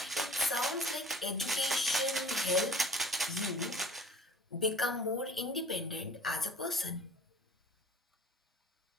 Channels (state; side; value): normal; both; correlation 0.45